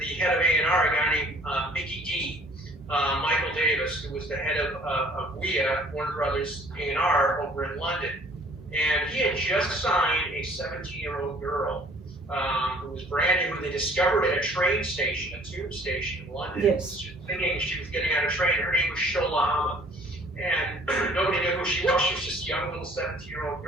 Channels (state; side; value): normal; both; correlation 0.55